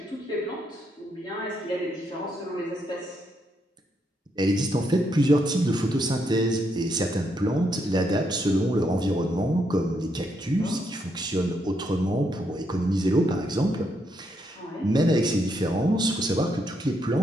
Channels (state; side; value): normal; both; correlation 0.77